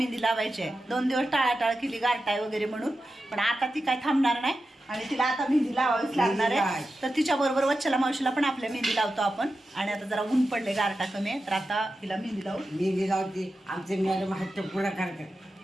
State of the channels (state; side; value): normal; both; correlation 0.91